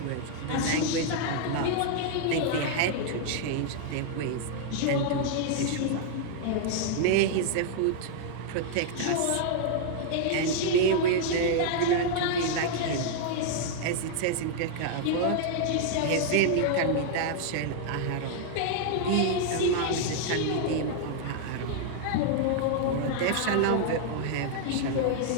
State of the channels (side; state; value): both; different; correlation -0.01